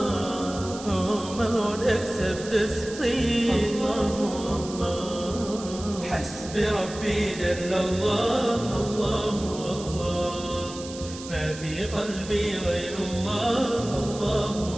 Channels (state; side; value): noise; right; hiss, 14 dB below the sound